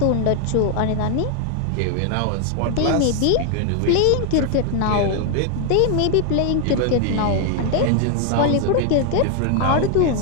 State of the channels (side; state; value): both; different; correlation 0.00